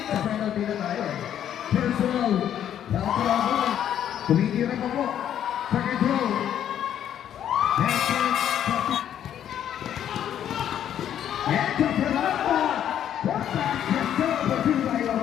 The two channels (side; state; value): right; quieter; 10.1 dB